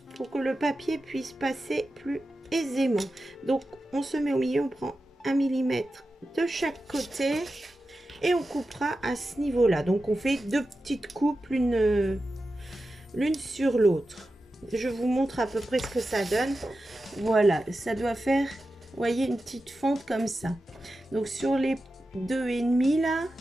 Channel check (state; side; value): normal; both; correlation 0.92